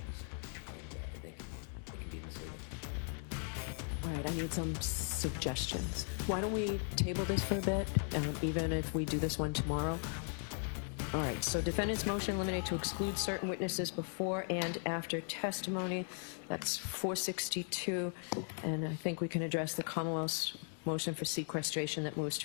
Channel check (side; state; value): right; silent; 53 dB below the other